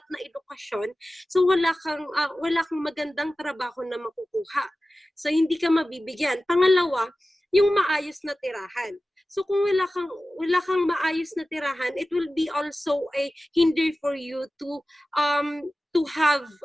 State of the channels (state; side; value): normal; both; correlation 0.95